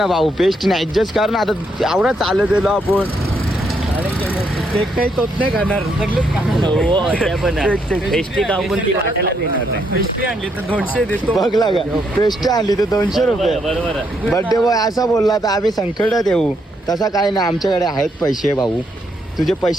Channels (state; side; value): normal; both; correlation 0.76